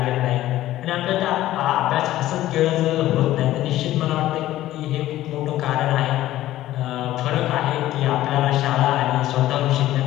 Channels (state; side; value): quieter; right; 14.6 dB